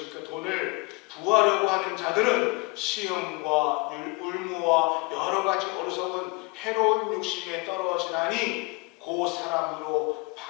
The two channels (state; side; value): quieter; right; 28.0 dB